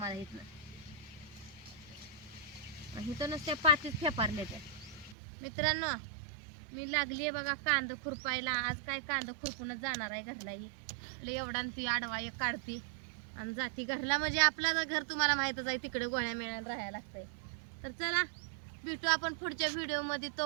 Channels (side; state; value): left; drops out; at 5.2 s